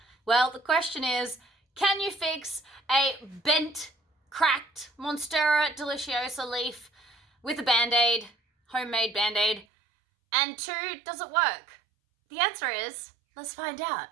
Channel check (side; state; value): left; drops out; at 9.7 s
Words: Well, the question is, can you fix a bent, cracked monstera deliciosa leaf with a band-aid, homemade band-aid? And two, does it work? The answer is, let's find out.